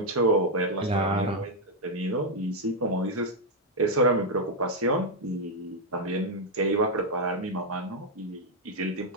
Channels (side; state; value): both; normal; correlation -0.01